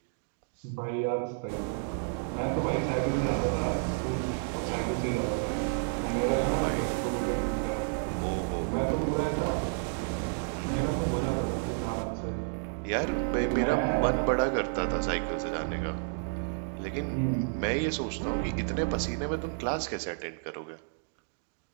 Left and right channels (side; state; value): left; silent; 57 dB below the other